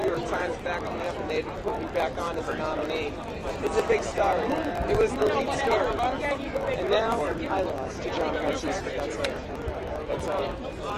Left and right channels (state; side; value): identical; both; correlation 1.00